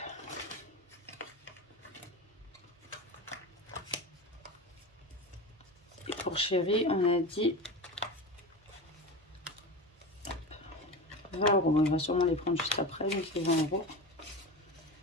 Et pour chéri, on a dit 20 €. On va sûrement les prendre juste après, donc c'est 20 €.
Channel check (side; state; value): both; normal; correlation 0.27